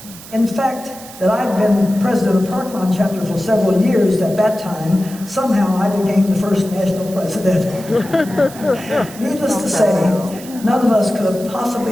In fact, that I'd been president of Park Lawn chapter for several years at that time, somehow I became the first national president. Needless to say, none of us could have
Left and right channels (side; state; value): right; noise; hiss, 17 dB below the sound